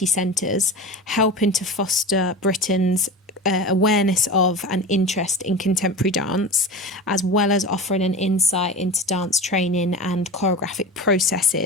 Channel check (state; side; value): normal; both; correlation 0.30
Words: centres, helping to foster Britain's awareness of and interest in contemporary dance, as well as offering an insight into dance training and choreographic